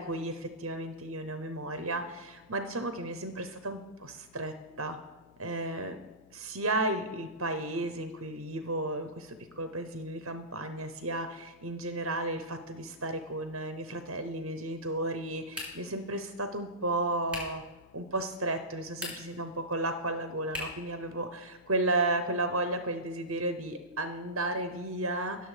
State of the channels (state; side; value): noise; left; hum, 26 dB below the sound